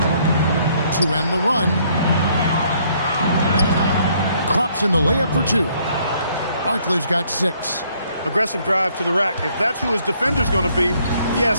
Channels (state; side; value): inverted; both; correlation -0.66